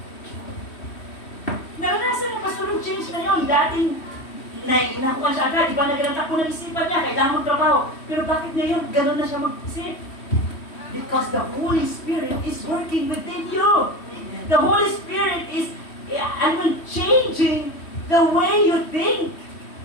Naranasan ng pastor yung change na yun. Dating, inakuha siya agad. Iba na ganang takbo ng isipan niya. Kailangan magtrabaho. Pero bakit ngayon, ganun na siya mag-isip? Because the Holy Spirit is working within you. The Holy Spirit is changing the way you think.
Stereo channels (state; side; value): late; right; 3.1 ms